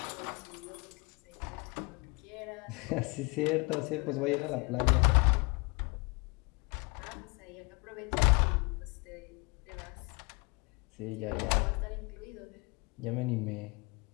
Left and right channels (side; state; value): right; quieter; 28.7 dB